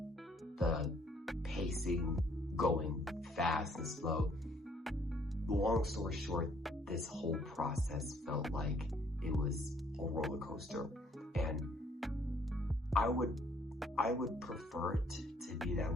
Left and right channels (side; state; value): both; normal; correlation 0.63